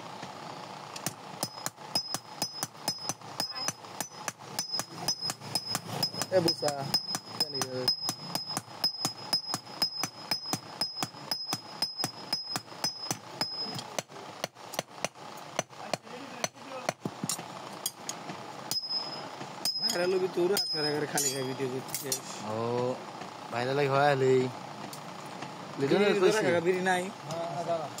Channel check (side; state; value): both; identical; correlation 1.00